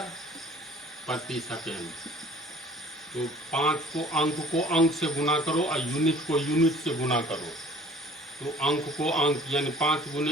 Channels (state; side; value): normal; both; correlation 0.50